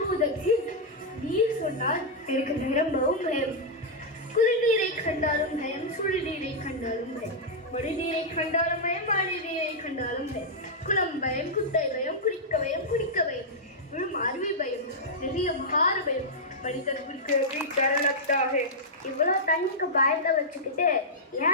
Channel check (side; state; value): both; normal; correlation -0.08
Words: நீர் சொன்னால் எனக்கு நிரம்பவும் பயம். குளிர்நீரை கண்டாலும் பயம், சுடுநீரை கண்டாலும் பயம், மடிநீரை கண்டாலும் பயம், மழைநீரை கண்டாலும் பயம், குளம் பயம், குட்டை பயம், குடிக்க பயம், குடிக்க பயம், விழும் அருவி பயம், நிறைய மகார பயம், மனிதர்களுக்கு டர் லக்தா ஹை. இவ்வளவு தண்ணிக்கு பயத்தை வச்சுக்கிட்டு